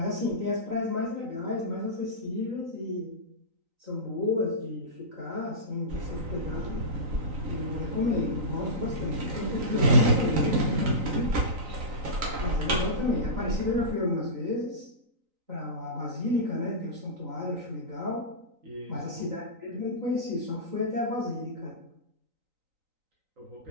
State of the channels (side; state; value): left; late; 3.9 ms